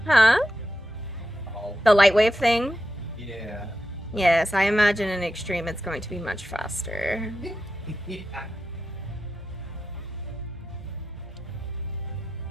Huh? Oh. The light wave thing? Yeah. Yes, I imagine in extreme it's going to be much faster. Yeah.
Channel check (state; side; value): normal; both; correlation 0.89